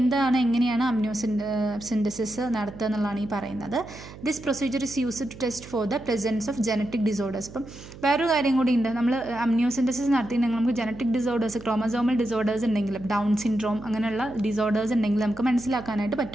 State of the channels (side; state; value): right; noise; hum, 16 dB below the sound